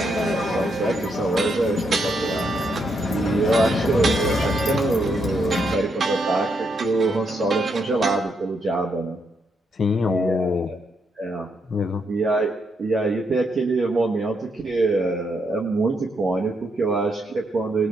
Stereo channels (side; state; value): both; normal; correlation 0.78